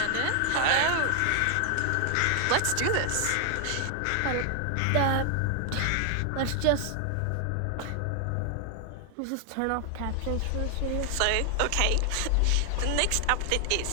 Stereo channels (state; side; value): different; both; correlation 0.00